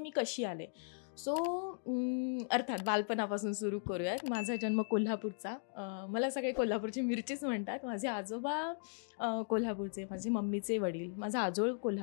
कशी आले. सो अर्थात बालपणापासून सुरू करूयात. माझा जन्म कोल्हापूरचा, मला सगळे कोल्हापूरची मिरचीच म्हणतात. माझे आजोबा कोल्हापूरचे, माझे मम्मीचे वडील, माझा आजोळ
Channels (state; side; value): silent; right; digital silence